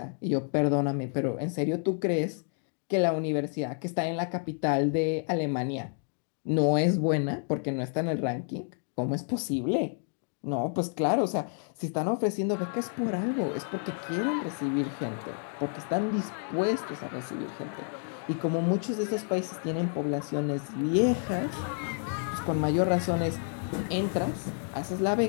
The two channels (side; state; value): right; silent; 58 dB below the other